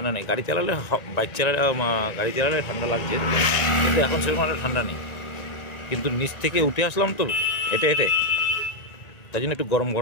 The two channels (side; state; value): right; late; 1.9 ms